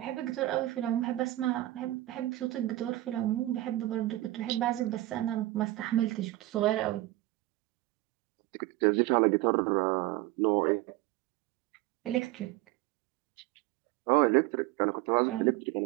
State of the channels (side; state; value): left; quieter; 17.1 dB